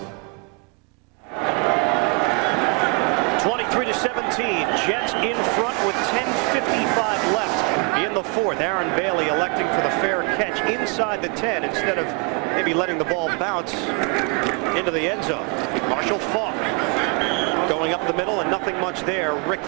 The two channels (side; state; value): left; quieter; 34.5 dB